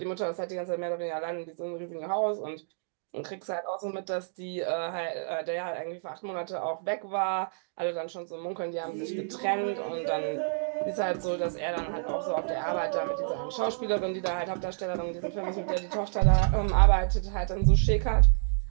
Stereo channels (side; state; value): left; silent; digital silence